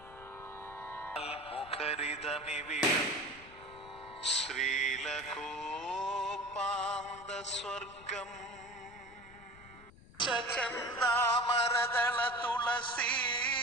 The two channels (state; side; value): noise; left; rumble, 21 dB below the sound